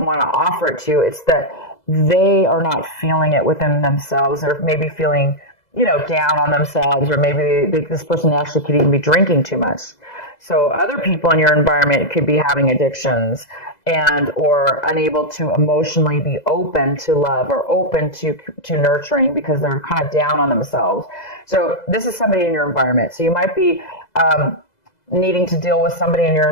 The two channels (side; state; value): right; late; 2.0 ms